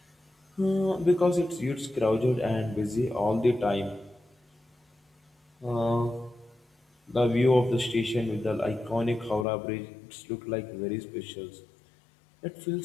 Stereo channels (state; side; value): drops out; right; at 9.5 s